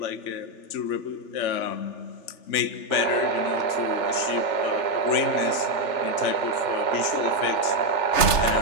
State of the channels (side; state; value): right; late; 3.3 ms